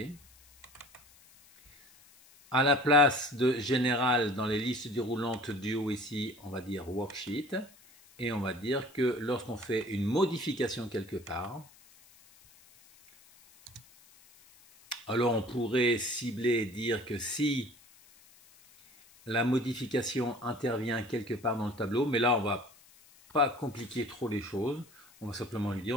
À la place de général dans les listes déroulantes du haut ici, on va dire worksheet. Et on va dire que lorsqu'on fait une modification quelque part, Alors on pourrait cibler et dire que si la modification intervient quelque part dans le tableau, mais là on va pas compliquer trop les choses, on va simplement lui dire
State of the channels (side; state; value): left; noise; hiss, 26 dB below the sound